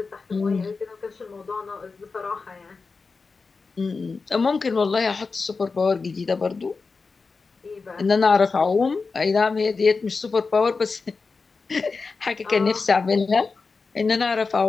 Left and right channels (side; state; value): right; quieter; 4.4 dB